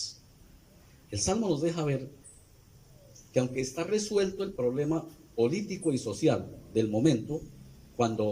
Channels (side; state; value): both; identical; correlation 1.00